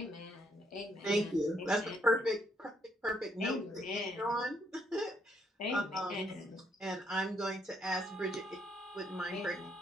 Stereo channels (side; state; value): both; normal; correlation 0.73